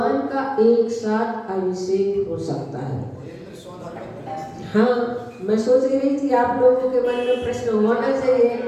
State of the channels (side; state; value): both; identical; correlation 1.00